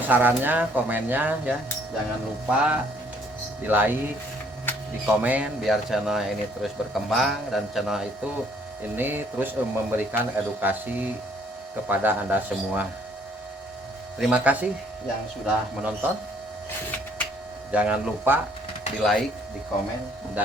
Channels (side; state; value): both; normal; correlation 0.63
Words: sarannya, komennya ya. Jangan lupa di like, di komen biar channel ini terus berkembang dan channel itu ini terus memberikan edukasi kepada Anda semua. Terima kasih yang sudah menonton. Jangan lupa di like, di komen